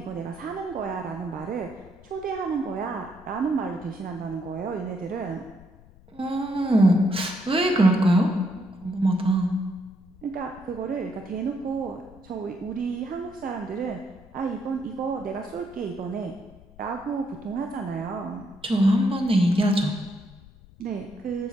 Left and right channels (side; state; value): left; noise; rumble, 23 dB below the sound